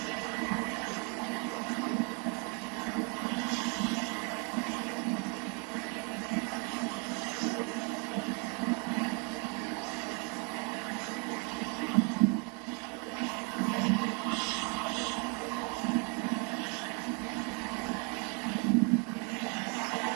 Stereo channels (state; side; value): quieter; left; 35.3 dB